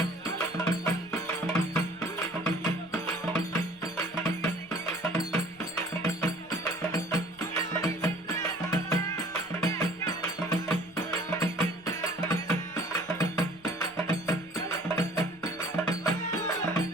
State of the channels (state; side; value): noise; left; rumble, 27 dB below the sound